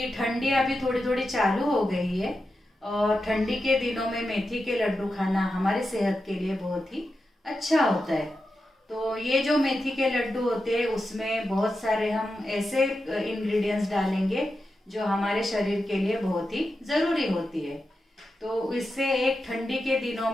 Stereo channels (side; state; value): both; normal; correlation 0.90